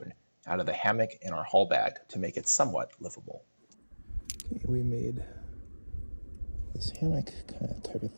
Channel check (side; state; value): both; inverted; correlation -1.00